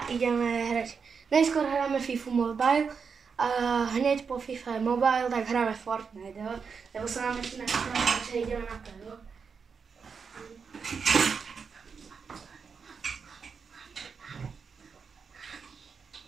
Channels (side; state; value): left; quieter; 5.8 dB